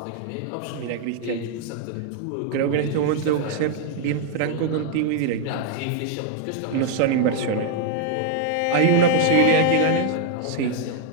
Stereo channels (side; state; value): both; different; correlation 0.00